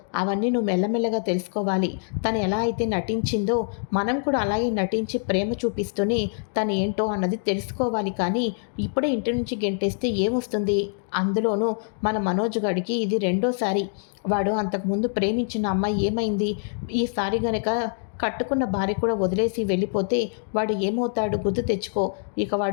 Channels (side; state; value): right; silent; digital silence